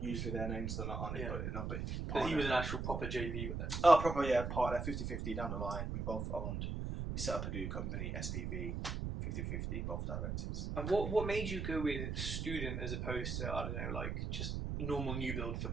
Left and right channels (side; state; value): right; noise; rumble, 3 dB below the sound